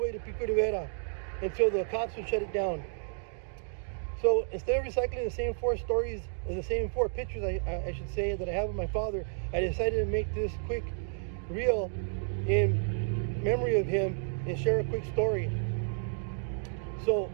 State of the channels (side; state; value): left; silent; digital silence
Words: to Pico Rivera, until the cops would shut it down. So instead of recycling the same four stories, or the same four pictures, I should say, that I have of my father, I decided to make this quick reel in memory of him and share a quick story. So